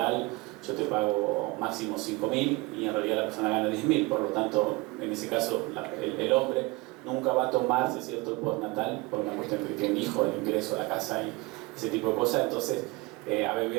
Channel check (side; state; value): left; quieter; 24.2 dB